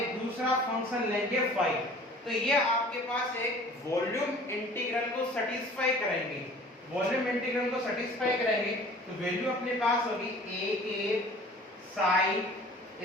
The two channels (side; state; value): both; normal; correlation 0.47